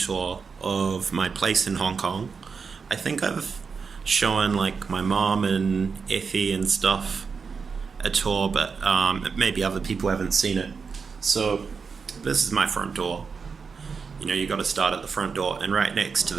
of my place in Hong Kong. I think I've shown like my mom and Effie and stuff a tour, but maybe other people haven't seen it. So, this is my front door. You got to start at the front door, and right next to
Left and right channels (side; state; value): left; quieter; 5.4 dB